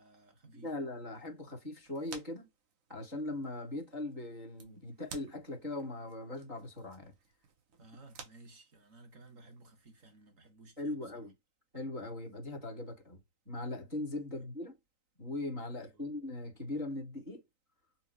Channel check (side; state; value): left; late; 3.9 ms